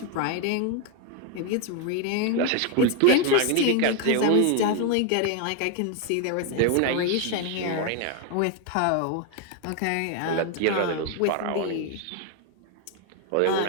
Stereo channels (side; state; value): both; different; correlation 0.01